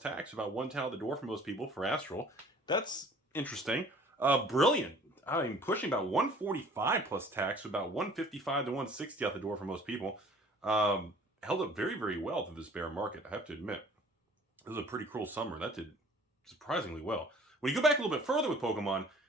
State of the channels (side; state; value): both; normal; correlation 0.51